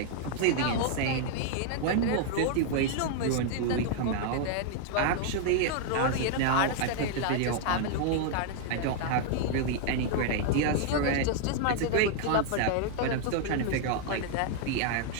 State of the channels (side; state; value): both; different; correlation 0.00